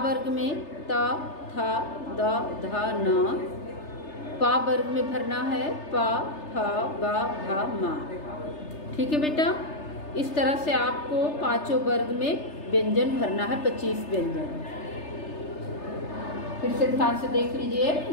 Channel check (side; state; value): right; late; 3.3 ms